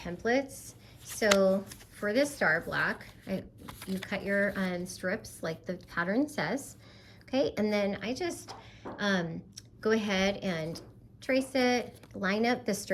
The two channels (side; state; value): both; identical; correlation 1.00